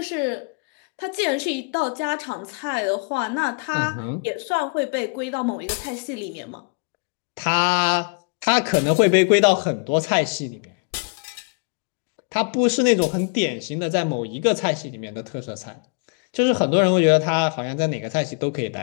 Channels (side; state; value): right; quieter; 36.6 dB